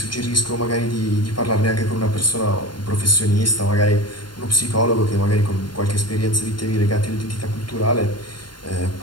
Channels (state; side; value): late; right; 0.72 ms